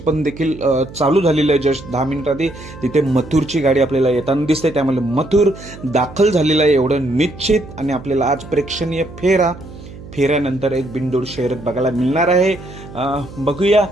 देखील चालू झालेलं आहे. जस्ट 10 मिनिटांआधी तिथे मथुरची गाडी आपल्याला येताना दिसते. त्यामुळे मथुर दाखल झालेला आहे एवढं निश्चित. आणि आपल्याला आज प्रेक्षणीय फेऱ्यानंतर एक बिनजोड शर्यत बघायला मिळणार आहे. बघूया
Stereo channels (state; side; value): noise; right; hum, 16 dB below the sound